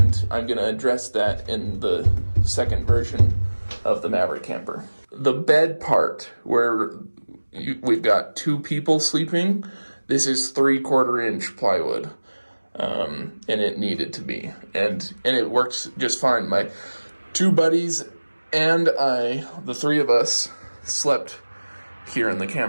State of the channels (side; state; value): both; inverted; correlation -1.00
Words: I'm going to address that in the second version of the Maverick Camper. The bed part, where we've got 2 people sleeping, this is 3/4 inch plywood, and it needed to be, and it works just fine. My 2 buddies and I, the 3 of us, slept here in the